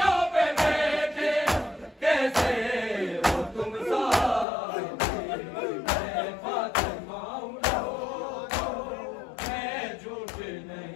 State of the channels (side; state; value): right; drops out; at 4.5 s